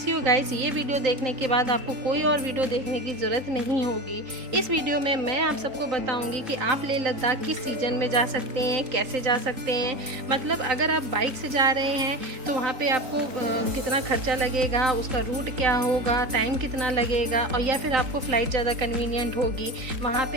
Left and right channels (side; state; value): left; late; 3.9 ms